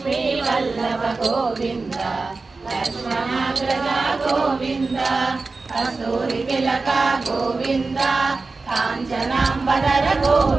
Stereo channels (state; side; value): quieter; left; 3.8 dB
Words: వల్లభ గోవింద లక్ష్మణాగ్రజ గోవింద కస్తూరి తిలక గోవింద కాంచనాంబధర